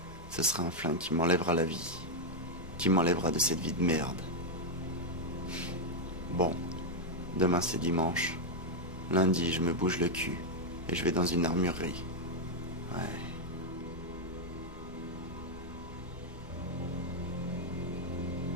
Ce sera un flingue qui m'enlèvera la vie. Qui m'enlèvera de cette vie de merde. Bon. Demain c'est dimanche. Lundi je me bouge le cul. Et je vais dans une armurerie. Ouais.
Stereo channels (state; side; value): normal; both; correlation 0.00